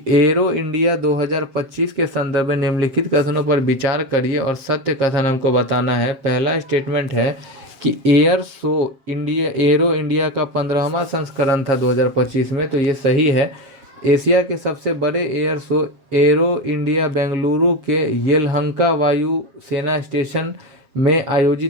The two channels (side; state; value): left; late; 7.4 ms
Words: एरो इंडिया 2025 के संदर्भ में निम्नलिखित कथनों पर विचार करिए और सत्य कथन हमको बताना है। पहला स्टेटमेंट है कि एरो इंडिया का 15वां संस्करण था 2025 में, तो ये सही है। एशिया के सबसे बड़े air show arrow India Bengaluru के येलहंका वायु सेना स्टेशन में